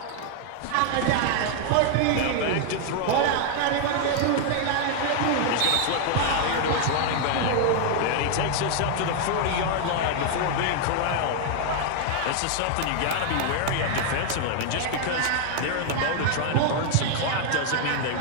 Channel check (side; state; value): both; different; correlation 0.00